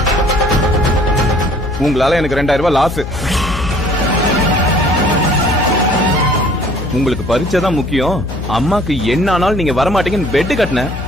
உங்களால எனக்கு 2000 ரூபாய் லாஸ். உங்களுக்கு பரீட்சை தான் முக்கியம். அம்மாக்கு என்ன ஆனாலும் நீங்க வரமாட்டீங்கன்னு பெட் கட்டின.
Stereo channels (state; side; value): noise; left; hum, 7 dB below the sound